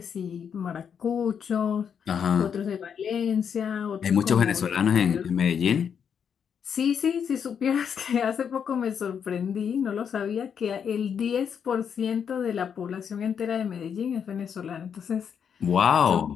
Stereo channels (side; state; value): right; quieter; 7.5 dB